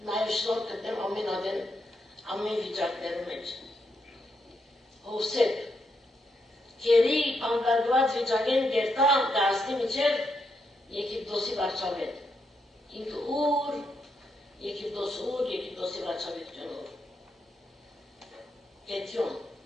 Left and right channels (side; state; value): both; normal; correlation 0.81